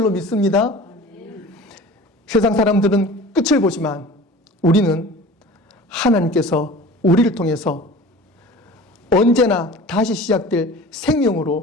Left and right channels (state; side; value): normal; both; correlation 0.40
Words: 믿습니다. 세상 사람들은 끝을 보지만 우리는 하나님께서 우리를 통해서 언제나 다시 시작될